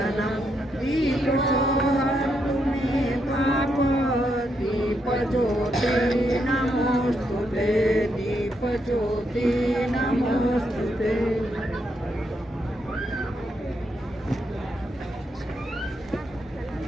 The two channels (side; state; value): both; normal; correlation 0.79